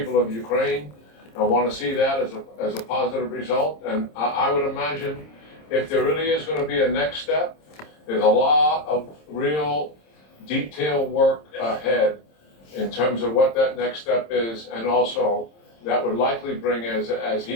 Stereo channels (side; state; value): right; late; 26 ms